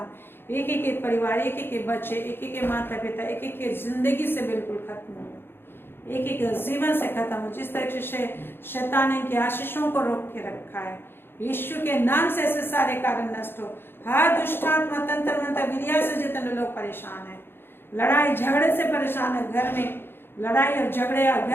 एक एक के परिवार, एक एक के बच्चे, एक एक के माता पिता, एक एक के जिंदगी से बिल्कुल खत्म हो, एक एक जीवन से खत्म हो। जिस तरह से शैतान इनके आशीषों को रोक के रखा है, यीशु के नाम से ऐसे सारे कारण नष्ट हो। हर दुष्टात्मा, तंत्र मंत्र, विद्या से जितने लोग परेशान हैं, लड़ाई झगड़े से परेशान है, घर में लड़ाई और झगड़े और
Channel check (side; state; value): right; late; 0.10 ms